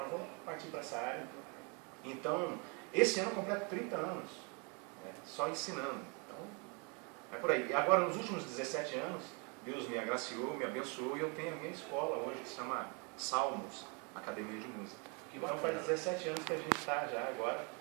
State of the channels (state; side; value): quieter; left; 33.4 dB